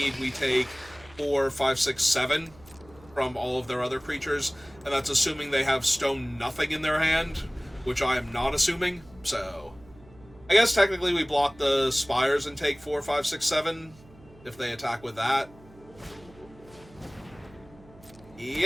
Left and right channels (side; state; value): right; noise; hum, 24 dB below the sound